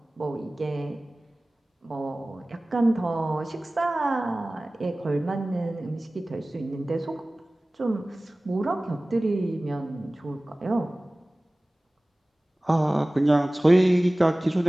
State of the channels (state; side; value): normal; both; correlation 0.98